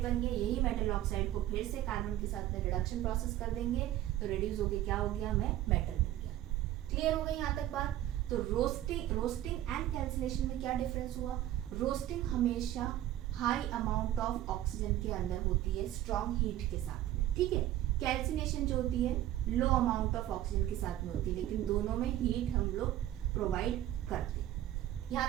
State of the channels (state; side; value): quieter; left; 13.3 dB